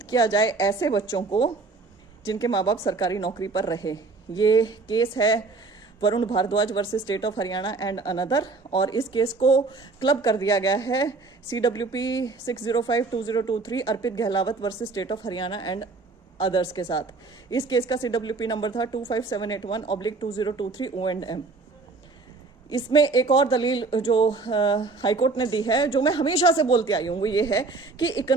किया जाए ऐसे बच्चों को जिनके माँ बाप सरकारी नौकरी पर रहे। ये केस है Varun Bhardwaj versus state of Haryana and another, और इस केस को क्लब कर दिया गया है CWP 6052023 Arpit Gahlawat versus state of Haryana and others के साथ। इस केस का CWP नंबर था 25781/2023 O&M। इसमें एक और दलील जो हाईकोर्ट ने दी है, जो मैं हमेशा से बोलती आई हूँ, वो ये है कि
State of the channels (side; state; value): left; quieter; 3.9 dB